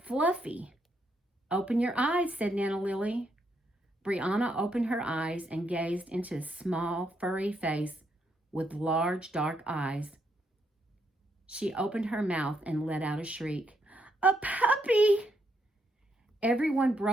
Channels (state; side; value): normal; both; correlation 0.76